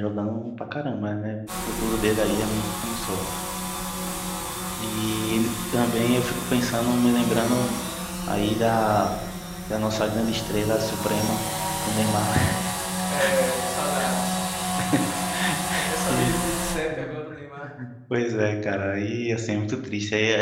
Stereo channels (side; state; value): both; identical; correlation 1.00